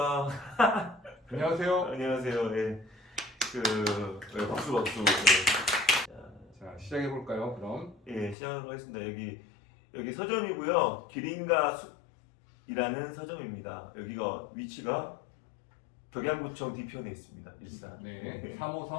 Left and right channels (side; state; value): right; drops out; at 8.3 s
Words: 안녕하세요. 안녕하세요. 네, 박수 박수. 자, 시작해 볼까요? 그럼. 예, 시작하도록 하겠습니다. 여기 서점이고요. 기린과 숲이라는 서점입니다. 여기가 위치가 덕양구청 뒤편에 있습니다. 일산. 네,